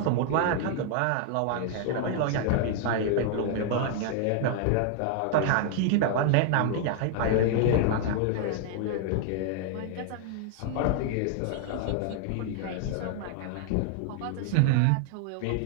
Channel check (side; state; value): both; different; correlation 0.00